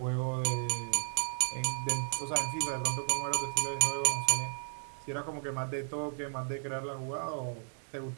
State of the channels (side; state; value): left; silent; digital silence